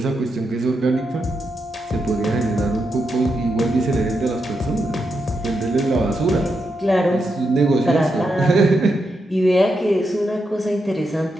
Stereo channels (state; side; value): normal; both; correlation 0.84